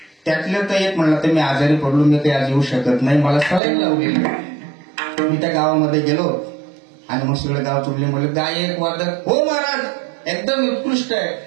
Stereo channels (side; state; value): left; drops out; at 3.6 s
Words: त्यातलं तर एक म्हणलं तर मी आजारी पडलो, मी काही आज येऊ शकत नाही, मला सलाईन लावलेली. मी त्या गावामध्ये गेलो आणि मग सगळं गाव तुडले. म्हणलं गायक वादक हो महाराज एकदम उत्कृष्ट आहे,